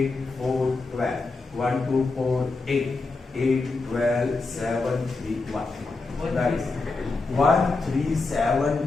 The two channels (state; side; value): quieter; right; 3.7 dB